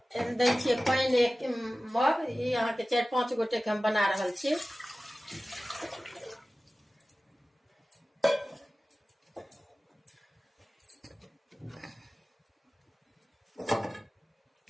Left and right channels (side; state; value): both; normal; correlation 0.96